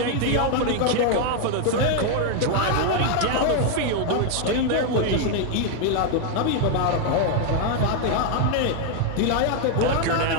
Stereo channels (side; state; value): both; different; correlation 0.00